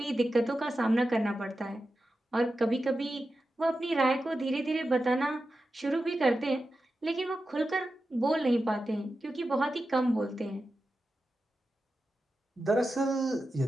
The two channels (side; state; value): both; normal; correlation 0.91